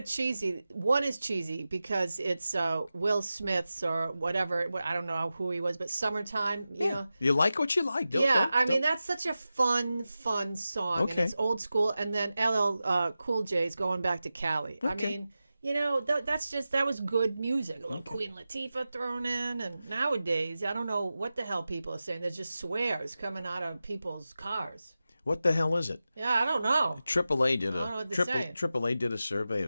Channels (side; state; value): both; inverted; correlation -0.94